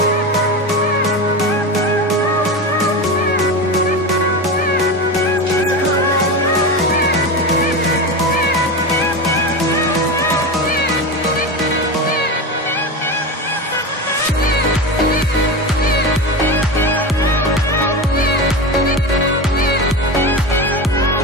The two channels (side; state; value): both; normal; correlation 0.22